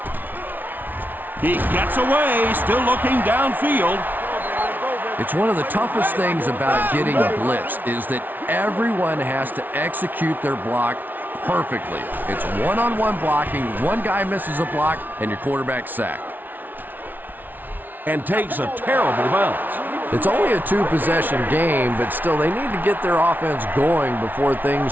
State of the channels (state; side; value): late; left; 0.085 ms